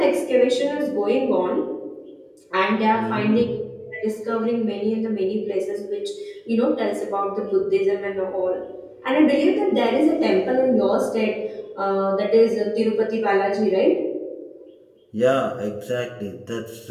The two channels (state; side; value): identical; both; correlation 1.00